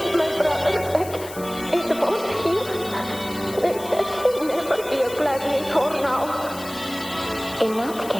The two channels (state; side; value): noise; left; hiss, 15 dB below the sound